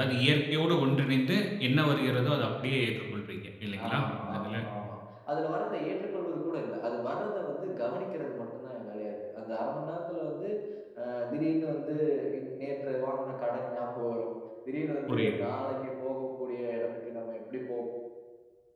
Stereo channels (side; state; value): both; identical; correlation 1.00